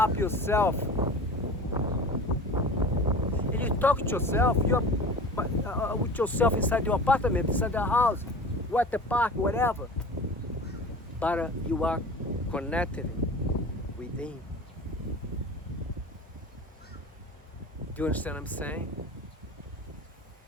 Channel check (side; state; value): both; normal; correlation 0.36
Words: yourself. You talk to yourself, you're with yourself inside your apartment, inside the house, or at the park, whatever. But you are connected within. Do you understand what I'm saying?